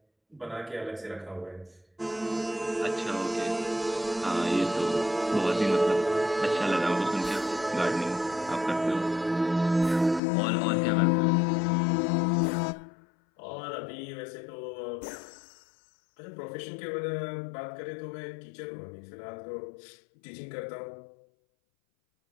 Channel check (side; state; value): right; drops out; at 10.2 s